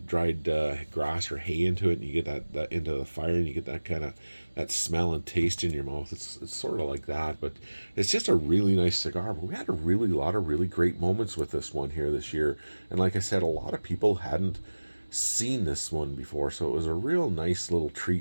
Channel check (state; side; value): inverted; both; correlation -1.00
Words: grass or hay into it, and you get that into the fire, and you get that kind of that smell and taste in your mouth. It's sort of like that, but it's just a really nice cigar. But we had a really lot of really great moments with this one here this year, and like I said, a lot of people hadn't seen this one before, so it was a real nice little